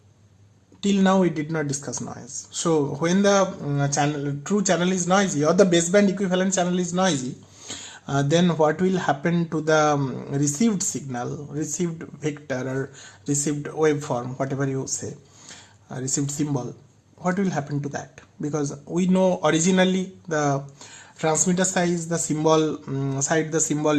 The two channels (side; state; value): both; identical; correlation 1.00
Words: till now we did not discuss noise. So when the true channel is noisy or the baseband equivalent channel is noisy, then what will happen to the received signal, received vector or received waveform, whatever you say, received symbol, what will happen to that? Because we know originally the transmitter size, the symbol side, the